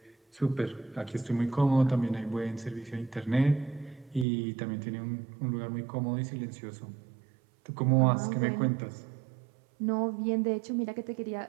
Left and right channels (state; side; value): drops out; left; at 4.2 s